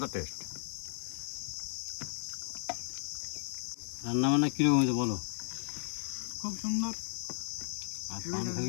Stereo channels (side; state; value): right; silent; digital silence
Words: টেস্ট। রান্না বান্না কিরকম হয়েছে বলো? খুব সুন্দর। আর